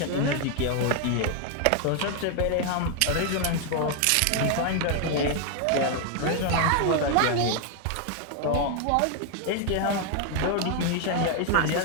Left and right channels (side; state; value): both; different; correlation 0.01